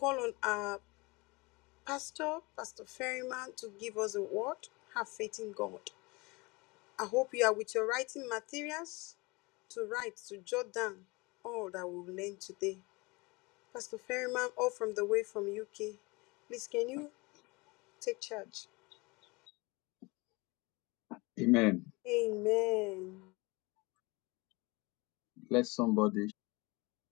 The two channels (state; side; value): quieter; right; 25.4 dB